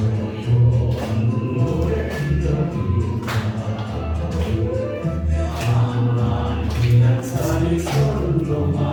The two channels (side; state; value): both; identical; correlation 1.00